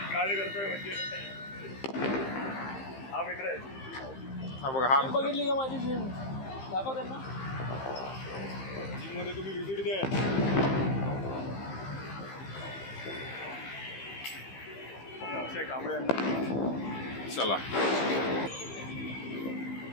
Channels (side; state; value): right; late; 15 ms